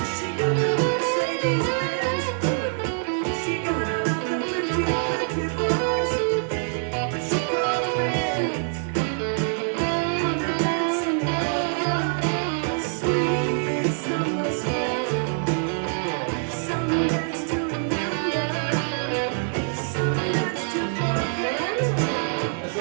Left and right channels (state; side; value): silent; left; digital silence